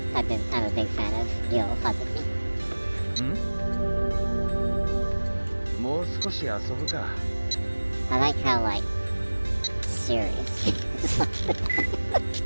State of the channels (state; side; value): inverted; both; correlation -1.00